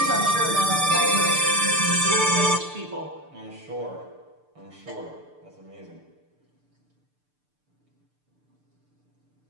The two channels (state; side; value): late; left; 6.8 ms